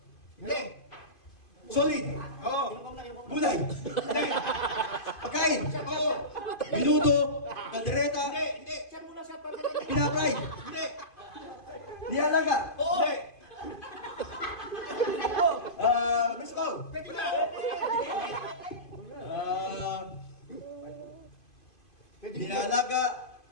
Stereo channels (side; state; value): right; late; 2.5 ms